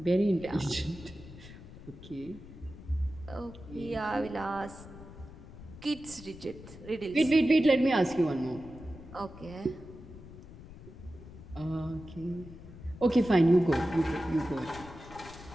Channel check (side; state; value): left; noise; rumble, 16 dB below the sound